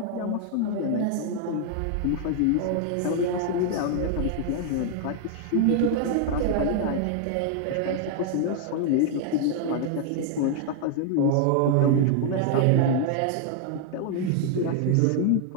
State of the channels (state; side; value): different; both; correlation 0.00